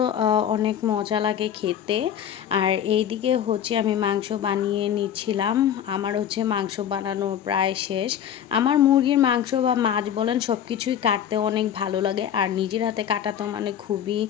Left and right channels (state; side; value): quieter; right; 9.6 dB